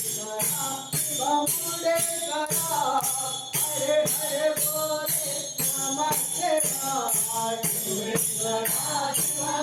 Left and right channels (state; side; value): identical; both; correlation 1.00